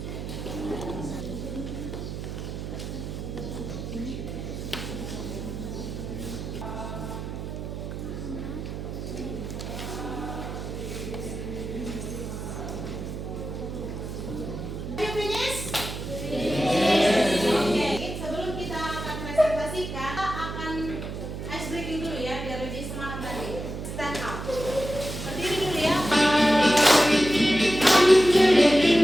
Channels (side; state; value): right; noise; hum, 7 dB below the sound